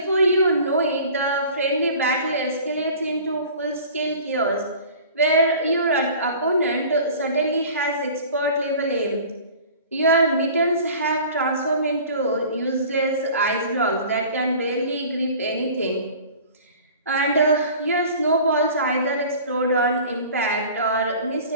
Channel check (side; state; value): both; inverted; correlation -0.44